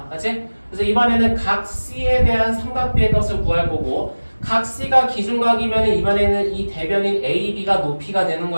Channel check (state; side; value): inverted; both; correlation -1.00